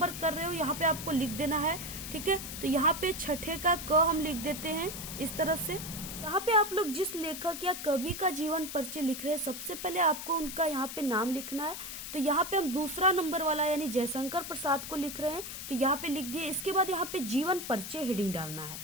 कर रहे हो यहाँ पे आपको लिख देना है। ठीक है, तो यहाँ पे छठे का क हम लिख देते हैं इस तरह से। यहाँ पे आप लोग जिस लेखक या कवि का जीवन परिचय लिख रहे हैं, सबसे पहले आपको उनका यहाँ पे नाम लिखना है। तो यहाँ पे हम दूसरा नंबर वाला यानी जयशंकर प्रसाद को लिख रहे हैं, तो यहाँ पे लिख दिए। इसके बाद यहाँ पे जीवन परिचय हेडिंग डालना है।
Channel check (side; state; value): left; noise; hiss, 8 dB below the sound